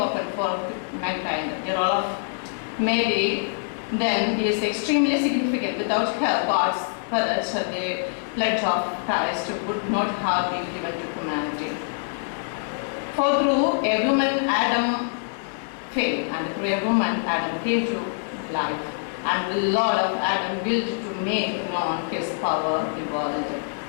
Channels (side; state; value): right; silent; digital silence